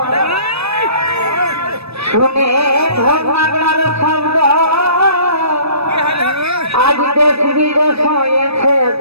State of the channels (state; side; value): late; left; 0.78 ms